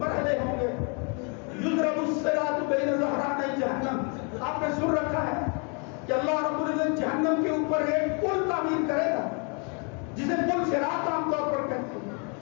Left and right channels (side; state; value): right; quieter; 36.5 dB